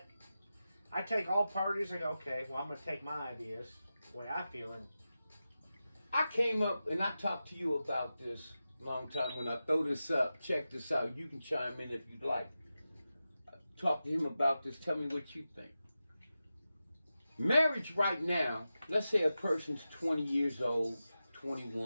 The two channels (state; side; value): inverted; both; correlation -0.93